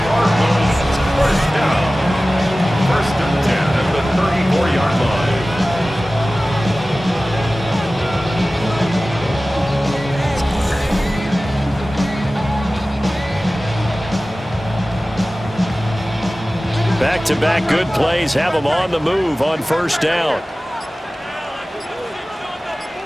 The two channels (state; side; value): normal; both; correlation 0.97